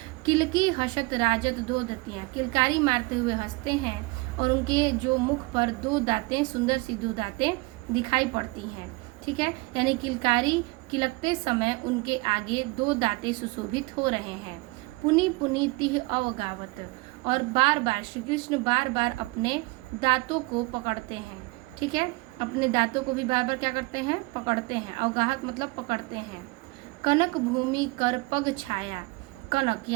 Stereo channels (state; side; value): quieter; left; 24.9 dB